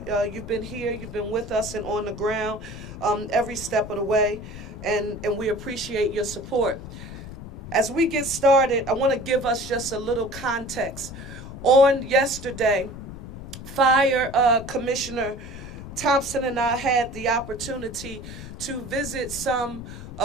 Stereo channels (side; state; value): left; noise; rumble, 12 dB below the sound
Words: You've been here, you've been with us and on the ground every step of the way. and we appreciate your support. As we get started, I want to give us just a little context. On yesterday, Fire Commissioner Thompson and I had the opportunity to visit some